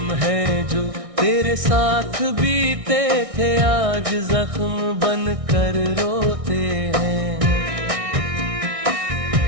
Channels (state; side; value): late; left; 1.6 ms